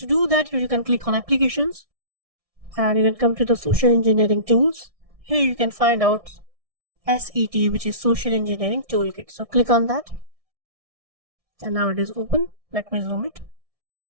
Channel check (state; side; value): late; left; 1.6 ms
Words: do that, you can click on applications and you can come to the social engineering tools. Here you can find out SET, which is social engineering toolkit. So click on that and now it is open. Let me zoom it.